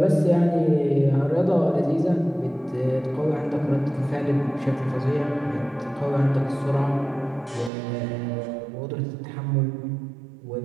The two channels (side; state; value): left; drops out; at 7.7 s